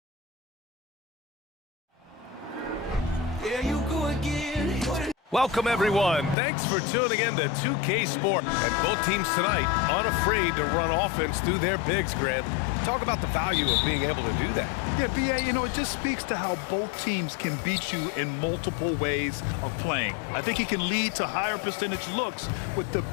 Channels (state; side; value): drops out; right; at 6.4 s